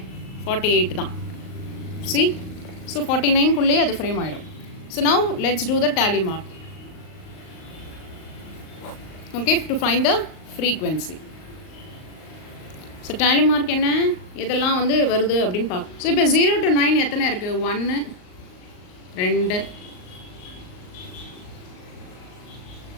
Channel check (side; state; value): right; late; 38 ms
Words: 48 தான். see, ஸோ 49குள்ளே அது ஃப்ரேம் ஆகிடும். So now let's do the tally mark. Okay, to find the frequency. So tally mark என்ன, இதெல்லாம் வந்து வருது அப்படின்னு பார்க்க. ஸோ இப்போ 0 to 9 எத்தனை இருக்குது? 1 2